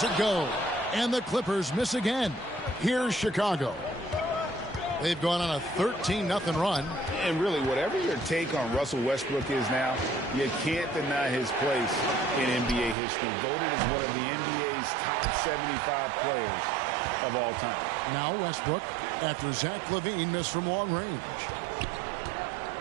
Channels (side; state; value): left; drops out; at 13.0 s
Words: it go. And the Clippers miss again. Here's Chicago. They've gone on a 13-0 run. And really, whatever your take on Russell Westbrook is now, you can't deny his place in NBA history. Voted as one of the NBA's top 75 players of all time. Now Westbrook, after Zach LaVine missed from long range.